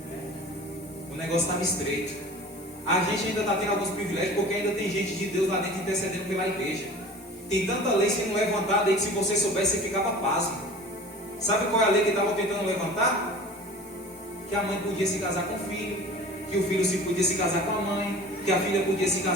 o negócio estava estreito. A gente ainda está tendo alguns privilégios, porque ainda tem gente de Deus lá dentro intercedendo pela igreja. Tem tanta lei sendo levantada aí que se você soubesse, você ficava pasmo. Sabe qual é a lei que estavam tentando levantar? Que a mãe podia se casar com o filho, que o filho podia se casar com a mãe, que a filha podia se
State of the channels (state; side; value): normal; both; correlation 0.41